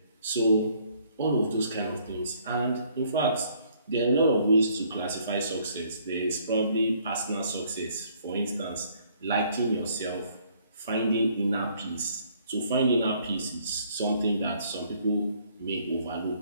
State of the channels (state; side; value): inverted; both; correlation -0.63